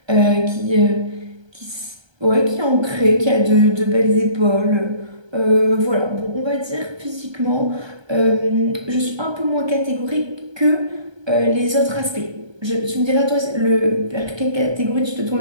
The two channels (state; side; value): late; left; 1.3 ms